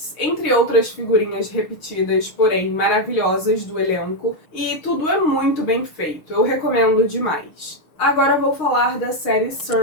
entre outras figurinhas repetidas, porém maravilhosas do elenco, e tudo é muito bem feito, eu recomendo demais. Agora vou falar da série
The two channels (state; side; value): late; right; 6.4 ms